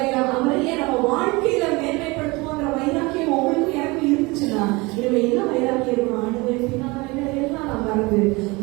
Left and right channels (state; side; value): quieter; left; 24.5 dB